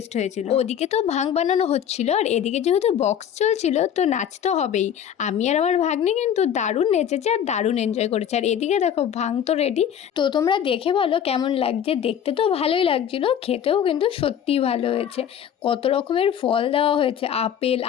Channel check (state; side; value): quieter; right; 9.1 dB